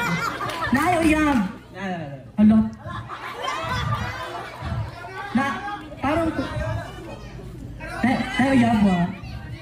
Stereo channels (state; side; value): identical; both; correlation 1.00